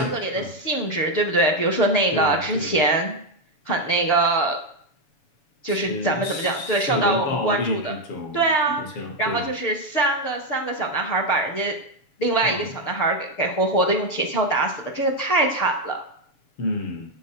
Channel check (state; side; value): late; right; 7.0 ms